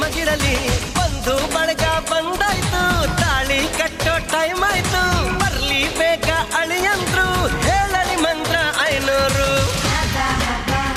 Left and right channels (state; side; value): identical; both; correlation 1.00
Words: ಬಂದು ಬಳಗ ಬಂದಾಯ್ತು ತಾಳಿ ಕಟ್ಟೋ ಟೈಮ್ ಆಯ್ತು ಬರ್ಲಿ ಬೇಗ ಅಳಿಯಂದ್ರು ಹೇಳಲಿ ಮಂತ್ರ 500